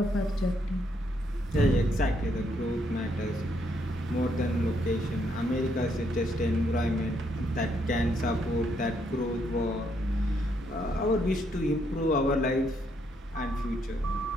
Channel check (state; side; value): normal; both; correlation 0.74